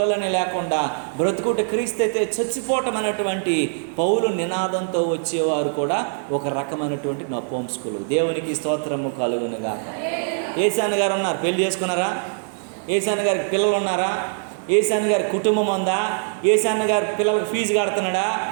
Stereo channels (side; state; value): left; silent; digital silence